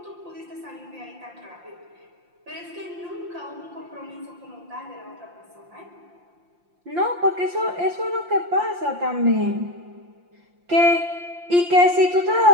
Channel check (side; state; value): left; late; 5.7 ms